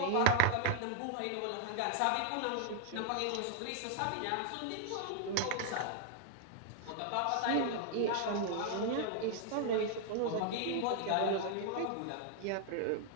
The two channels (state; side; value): different; both; correlation 0.00